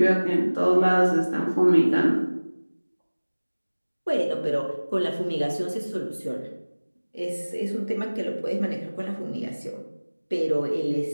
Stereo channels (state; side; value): inverted; both; correlation -1.00